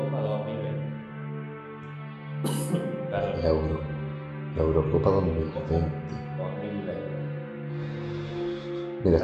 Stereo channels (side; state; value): both; identical; correlation 1.00